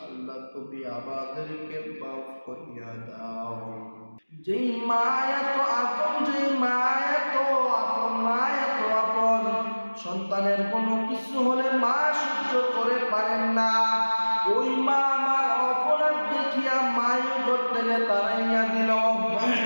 আল্লাহ তুমি আমাদেরকে মাফ করিয়া দাও। যেই মায়া তো আপন, যেই মায়া তো আপন, মায়া তো আপন, সন্তানের কোনো কিছু হলে মা সহ্য করে পারেন না। ওই মা আমার অপরাধ দেখিয়া মায়ের ঘর থেকে তাড়াইয়া দিল,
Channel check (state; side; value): inverted; both; correlation -1.00